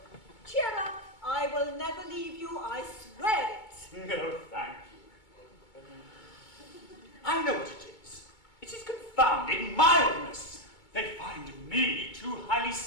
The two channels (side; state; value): right; late; 2.2 ms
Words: Cheer up. I will never leave you, I swear it. No, thank you. I know what it is. It is confounded mildness. They find me too highly